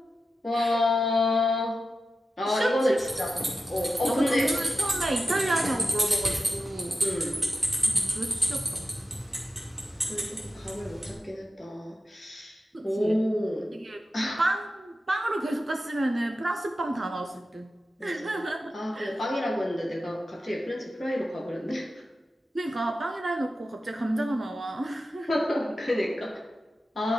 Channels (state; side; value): normal; both; correlation 0.91